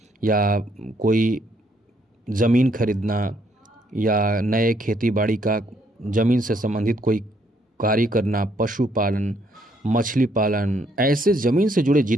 या कोई ज़मीन खरीदना या नए खेती बाड़ी का ज़मीन से संबंधित कोई कार्य करना, पशुपालन, मछली पालन, ऐसे ज़मीन से जुड़े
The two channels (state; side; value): normal; both; correlation 0.70